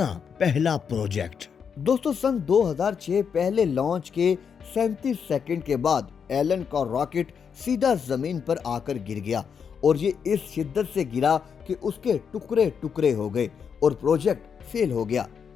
पहला प्रोजेक्ट। दोस्तों, सन 2006 पहले लॉन्च के 37 सेकंड के बाद एलन का रॉकेट सीधा जमीन पर आकर गिर गया और ये इस शिद्दत से गिरा कि उसके टुकड़े टुकड़े हो गए और प्रोजेक्ट फेल हो गया।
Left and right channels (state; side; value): quieter; right; 6.8 dB